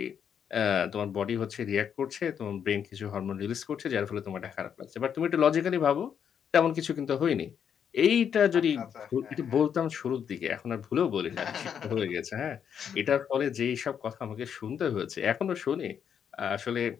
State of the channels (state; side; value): quieter; right; 8.0 dB